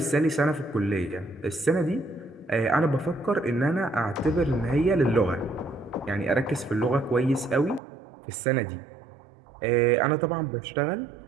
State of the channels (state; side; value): drops out; left; at 7.8 s